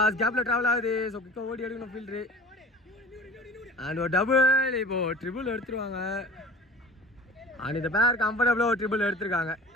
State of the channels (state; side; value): normal; both; correlation 0.41